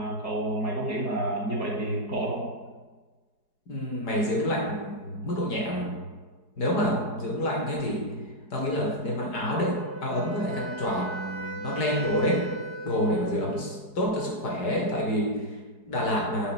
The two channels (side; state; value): right; late; 4.7 ms